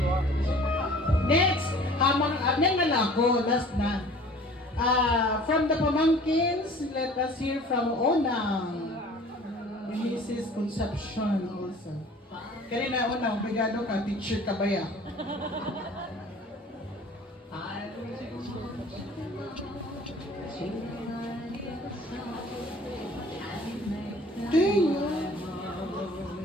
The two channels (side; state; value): both; normal; correlation 0.48